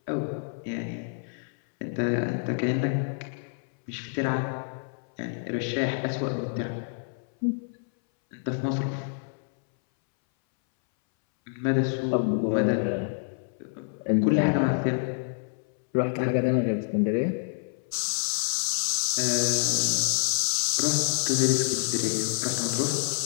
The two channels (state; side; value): silent; right; 60 dB below the other